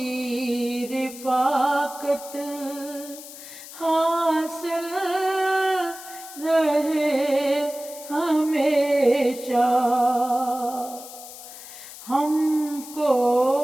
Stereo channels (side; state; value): left; noise; hiss, 15 dB below the sound